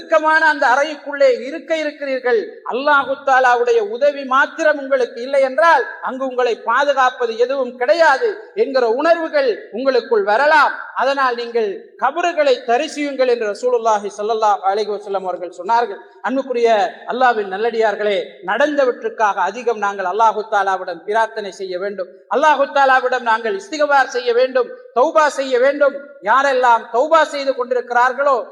அந்த அறைக்குள்ளே இருக்க இருக்கிறீர்கள். அல்லாஹு தஆலாவுடைய உதவி மாத்திரம் உங்களுக்கு இல்லை என்றால் அங்கு உங்களை பாதுகாப்பது எதுவும் கிடையாது என்கிற உணர்வுகள் உங்களுக்கு வரலாம். அதனால் நீங்கள் கபறுகளை தரிசியுங்கள் என்று ரசூலுல்லாஹி ஸல்லல்லாஹு அலைஹி வஸல்லம் அவர்கள் சொன்னார்கள். அன்புக்குரிய அல்லாஹ்வின் நல்லடியார்களே, நடந்தவற்றுக்காக அதிகம் நாங்கள் அல்லாஹு தஆலாவிடம் பிரார்த்தனை செய்ய வேண்டும். அல்லாஹு தஆலாவிடம் நாங்கள் இஸ்திக்பார் செய்ய வேண்டும், தௌபா செய்ய வேண்டும். யாரெல்லாம் தௌபா செய்து கொண்டிருக்கிறார்களோ,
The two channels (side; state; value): both; identical; correlation 1.00